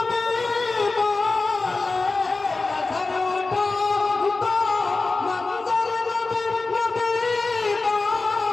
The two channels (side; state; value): right; quieter; 3.7 dB